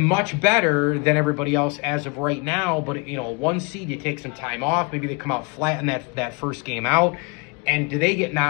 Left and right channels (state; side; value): quieter; right; 30.4 dB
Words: better than everybody else as of right now. But, 1 seed, you take some time off. Maybe they come out flat in that first game out. And do they get